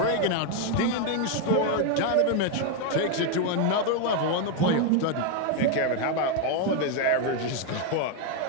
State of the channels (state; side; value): different; both; correlation 0.01